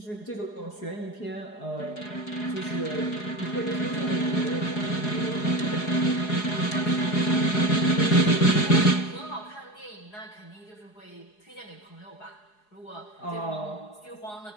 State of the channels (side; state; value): right; late; 4.8 ms